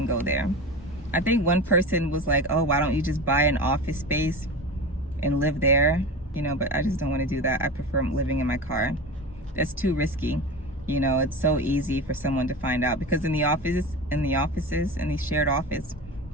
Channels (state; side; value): normal; both; correlation 0.28